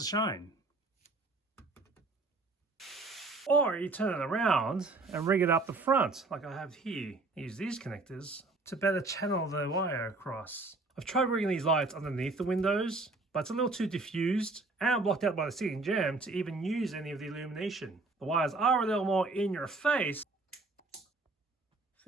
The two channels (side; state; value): left; quieter; 3.4 dB